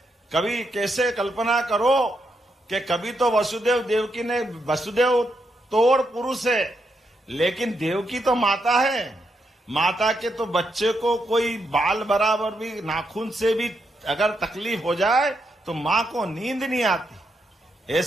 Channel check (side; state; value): both; normal; correlation 0.81